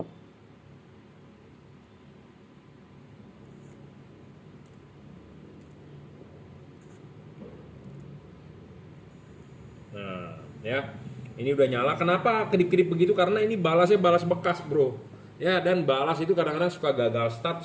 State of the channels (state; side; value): identical; both; correlation 1.00